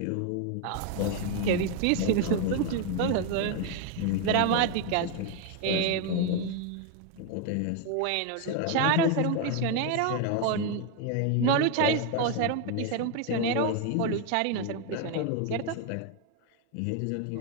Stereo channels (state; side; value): different; both; correlation 0.01